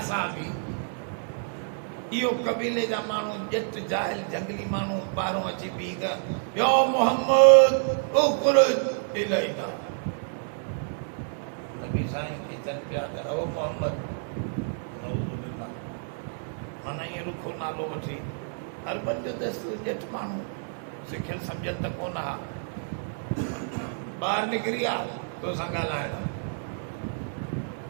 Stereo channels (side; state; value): left; silent; digital silence